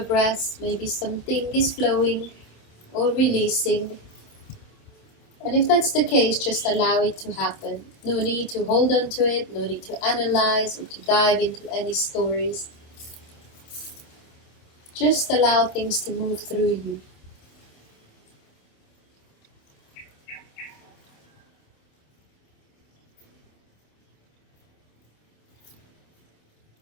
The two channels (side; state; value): right; late; 27 ms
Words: maybe something is flowing or releasing. And if that's the case, just allow it to happen. No need to hold on to it, no need to analyze or to dive into any stories. Just allow things to move through you.